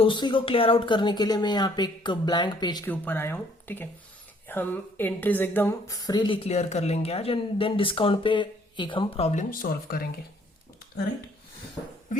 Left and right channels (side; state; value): both; normal; correlation 0.62